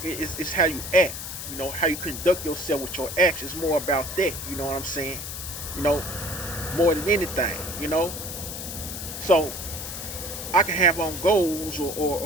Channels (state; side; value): noise; left; hiss, 7 dB below the sound